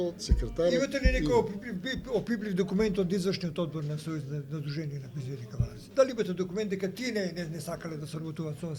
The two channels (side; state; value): both; identical; correlation 1.00